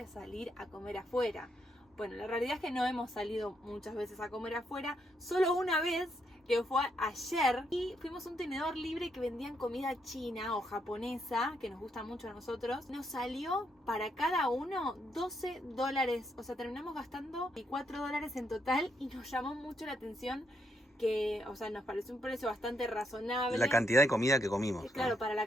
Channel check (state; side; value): normal; both; correlation 0.77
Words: salir a comer afuera. Bueno, la realidad es que no hemos salido muchas veces a comer afuera, solo una vez, que fue ayer, y fuimos a un tenedor libre que vendían comida china o japonesa, que nos gusta mucho a nosotros. Nos salió para cada uno $12, o sea, terminamos gastando $4 en total y nos llamó mucho la atención que, o sea, nos pareció un precio bastante razonable. La cantidad de comida que comimos, ¿no? Claro, para la